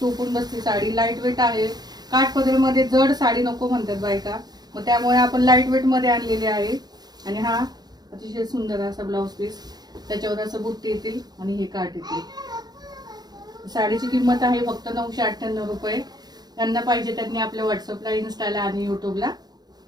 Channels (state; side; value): late; left; 0.19 ms